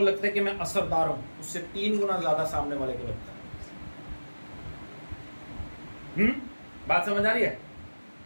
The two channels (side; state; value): both; inverted; correlation -1.00